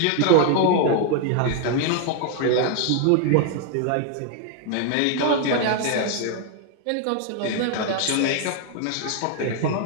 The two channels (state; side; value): different; both; correlation 0.00